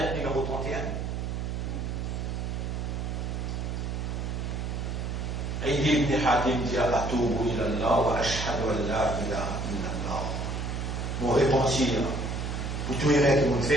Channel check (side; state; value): right; noise; hum, 3 dB below the sound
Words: numéro 31. Aïdi ibn Hatim dit Atoubu ilallah wa ashhadu an la ilaha illallah. Mon repentir pour tout les règles qui vont